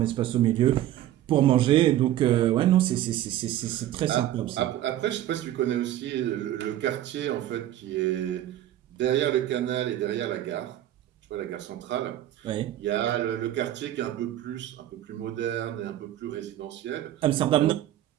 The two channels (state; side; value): quieter; left; 13.0 dB